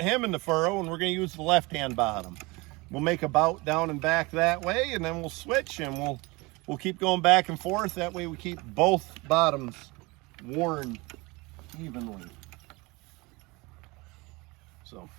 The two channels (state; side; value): quieter; left; 24.7 dB